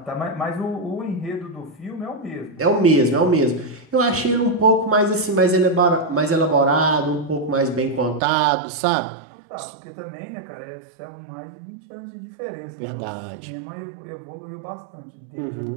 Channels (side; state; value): left; drops out; at 8.2 s